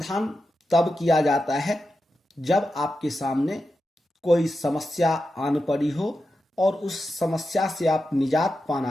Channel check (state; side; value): normal; both; correlation 0.89